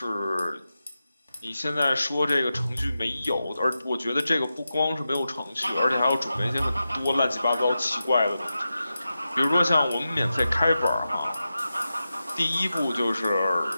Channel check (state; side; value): inverted; both; correlation -0.92